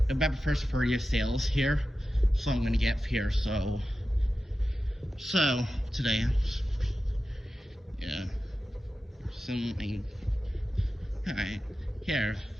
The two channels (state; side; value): normal; both; correlation 0.93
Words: November 1st for your sales here. So, I'm gonna get here. So today, yeah. Something. Alright, here.